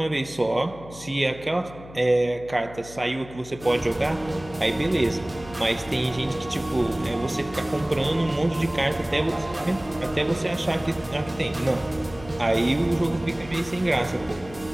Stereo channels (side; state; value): left; noise; hum, 17 dB below the sound